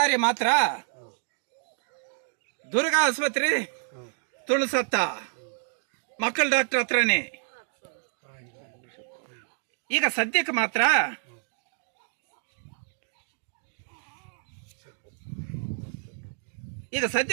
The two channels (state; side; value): silent; left; digital silence